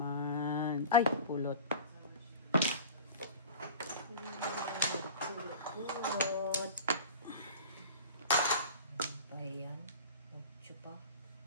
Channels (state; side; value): inverted; both; correlation -0.36